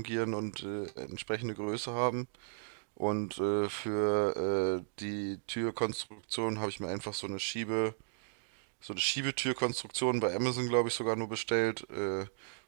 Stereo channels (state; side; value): silent; left; digital silence